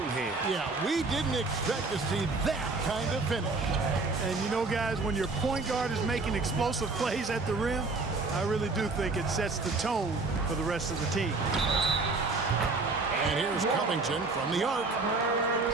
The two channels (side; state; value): left; quieter; 3.7 dB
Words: hands. Yeah, we didn't expect to see that kind of finish. And you know, guys, when your point guard is making explosive plays at the rim, I really do think it sets the tone for the rest of the team. And here's Covington from the arc.